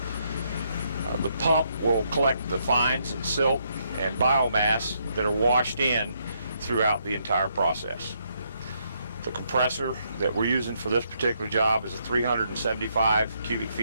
The pump will collect the fines and silt and biomass that are washed in throughout the entire process. The compressor that we're using for this particular job is a 375 cubic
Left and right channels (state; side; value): inverted; both; correlation -0.75